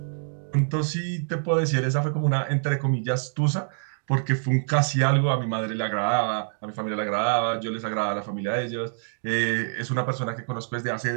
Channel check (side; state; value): left; silent; digital silence